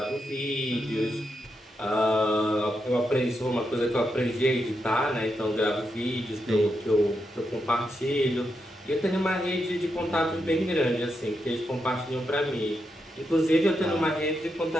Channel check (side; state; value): both; normal; correlation 0.84